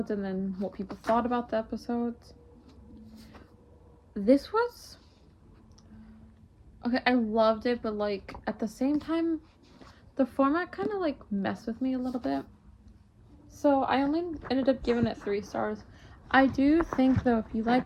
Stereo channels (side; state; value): both; identical; correlation 1.00